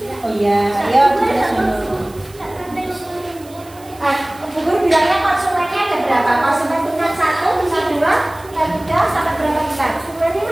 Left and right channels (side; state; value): right; noise; hiss, 24 dB below the sound